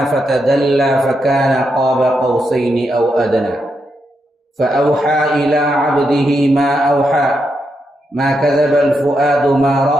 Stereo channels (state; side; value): normal; both; correlation 0.83